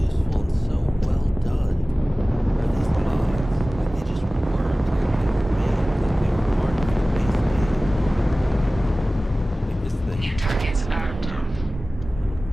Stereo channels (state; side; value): normal; both; correlation 0.97